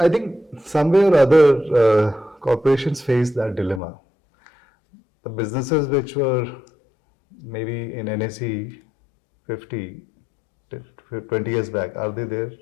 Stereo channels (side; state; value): right; drops out; at 3.8 s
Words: think somewhere or other, corporations face that dilemma. The businesses which were maybe in NSE 50, 20 years back, are they there?